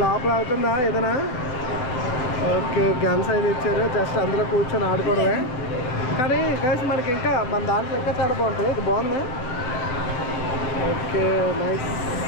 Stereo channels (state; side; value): late; right; 7.9 ms